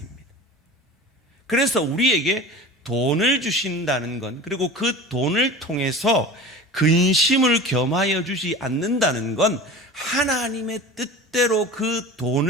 그래서 우리에게 돈을 주신다는 건, 그리고 그 돈을 통해서 근심을 겸하여 주지 않는다는 건 하나님의 뜻대로 그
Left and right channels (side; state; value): both; normal; correlation 0.35